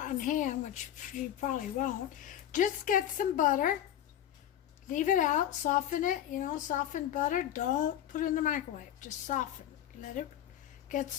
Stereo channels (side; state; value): right; quieter; 11.2 dB